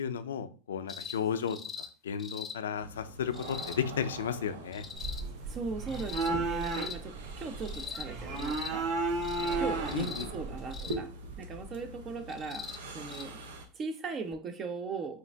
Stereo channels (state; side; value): normal; both; correlation 0.13